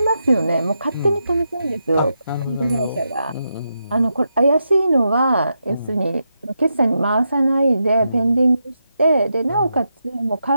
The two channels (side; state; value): both; inverted; correlation -0.85